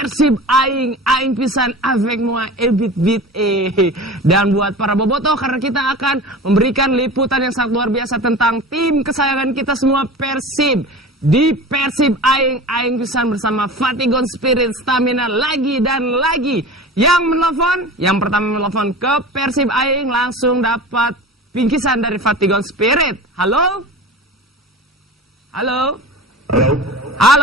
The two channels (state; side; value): normal; both; correlation 0.34